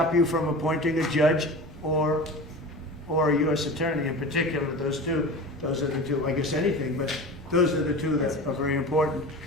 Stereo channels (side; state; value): both; normal; correlation 0.33